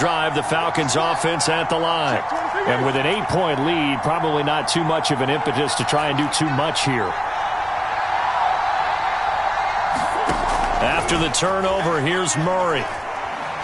the Falcons offense at the line. And with an 8-point lead, probably not too much of an impetus to try and do too much here. After the turnover, here's Murray.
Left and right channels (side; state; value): both; identical; correlation 1.00